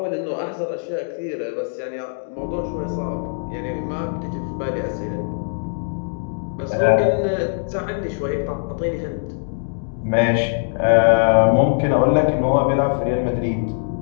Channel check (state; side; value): silent; right; digital silence